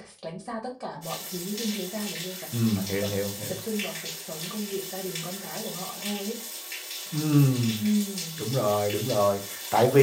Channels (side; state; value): both; identical; correlation 1.00